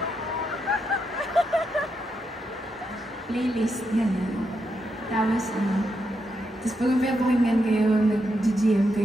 Playlist, ganyan. Tapos pag pinapakinggan kayo, nag-GM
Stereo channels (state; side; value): normal; both; correlation 0.82